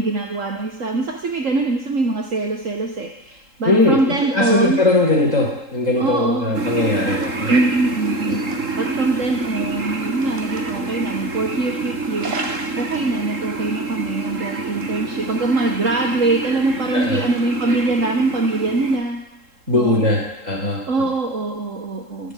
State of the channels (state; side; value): late; left; 3.8 ms